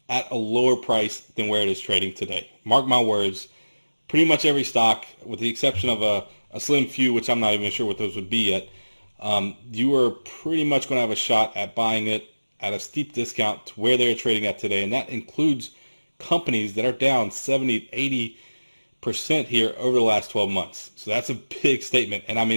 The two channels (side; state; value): both; inverted; correlation -1.00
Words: at a lower price than where it is trading today. Mark my words, pretty much every stock, with the exception of a slim few, which I'm not even sure what those would be yet, you are pretty much going to have a shot at buying it at a steep discount to where they're trading at today. And that includes companies that are down 70, 80% here over the last 12 months. So that's a big statement. And I